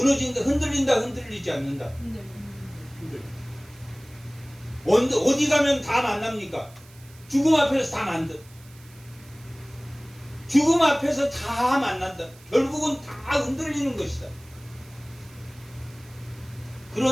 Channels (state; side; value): noise; right; hiss, 25 dB below the sound